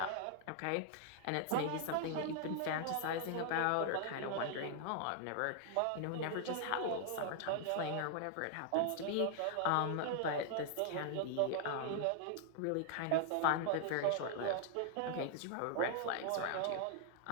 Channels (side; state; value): both; different; correlation 0.00